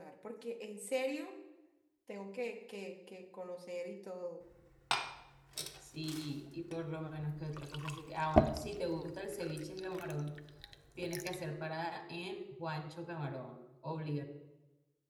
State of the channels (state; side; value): identical; both; correlation 1.00